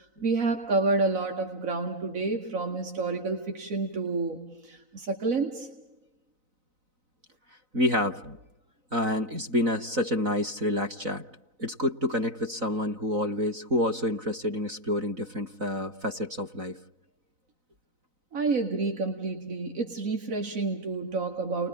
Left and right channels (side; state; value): left; late; 4.0 ms